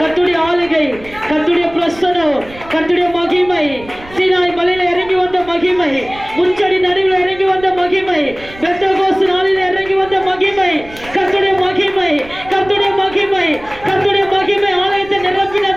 ஆளுகை, கர்த்தருடைய பிரசனம், கர்த்தருடைய மகிமை, சீனாய் மலையில இறங்கி வந்த மகிமை, முச்சடி நடுவில் இறங்கி வந்த மகிமை, பெந்தகோஸ்து நாளில் இறங்கி வந்த மகிமை, கர்த்தருடைய மகிமை, கர்த்தருடைய மகிமை, கர்த்தருடைய மகிமை ஆலயத்தை நிரப்பின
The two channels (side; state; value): right; noise; rumble, 19 dB below the sound